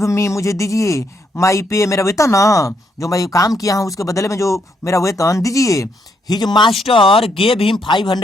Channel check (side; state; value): both; normal; correlation 0.75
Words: मी, मुझे दीजिए, माई पे, मेरा वेतन ना, जो मैं काम किया हूँ उसके बदले में जो मेरा वेतन दीजिए। हिज मास्टर गेव हिम